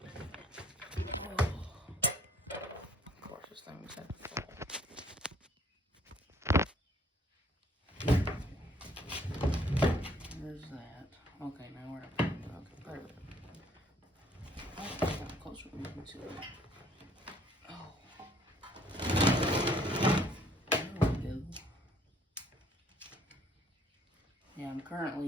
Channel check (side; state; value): both; normal; correlation 0.61